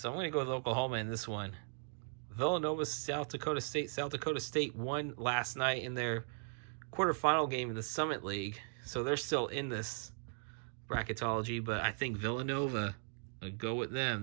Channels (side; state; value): left; silent; 52 dB below the other